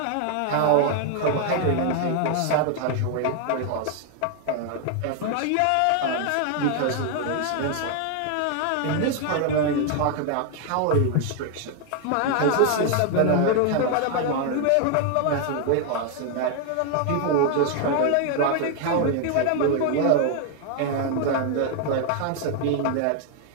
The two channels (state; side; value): different; both; correlation 0.00